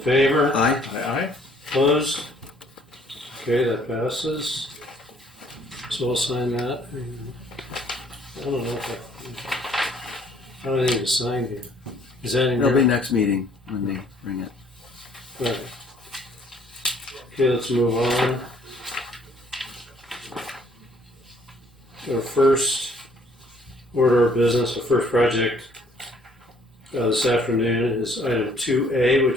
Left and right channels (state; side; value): normal; both; correlation 0.61